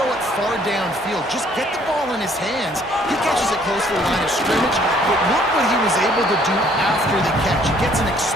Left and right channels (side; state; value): both; normal; correlation 0.61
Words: it far downfield. Just get the ball in his hands. He catches it close to the line of scrimmage, but look what he was able to do after the catch. He gets an